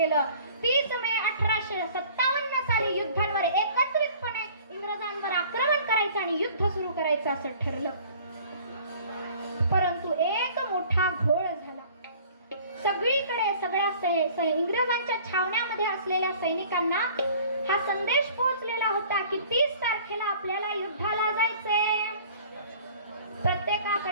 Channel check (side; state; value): both; inverted; correlation -0.50